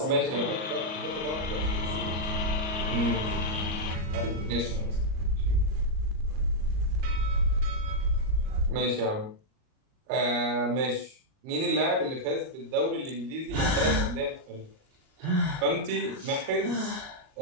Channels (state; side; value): late; left; 38 ms